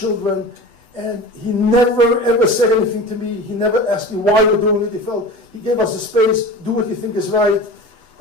and he never ever said anything to me. He never asked me why we're doing it. He gave us a space, do what you think is right.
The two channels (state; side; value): late; left; 8.0 ms